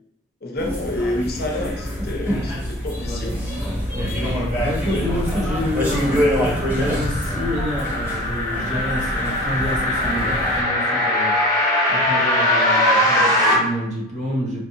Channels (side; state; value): both; normal; correlation 0.35